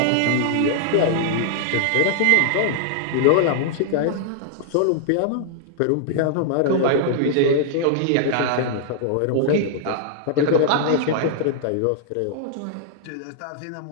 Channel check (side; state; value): both; different; correlation -0.01